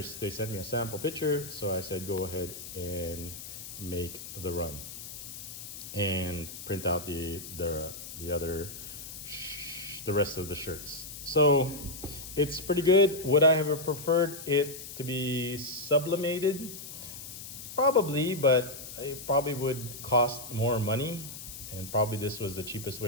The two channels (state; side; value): noise; left; hiss, 11 dB below the sound